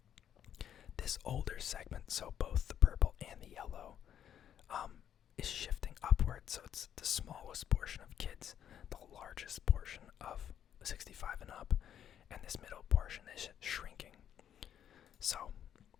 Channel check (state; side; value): quieter; right; 9.7 dB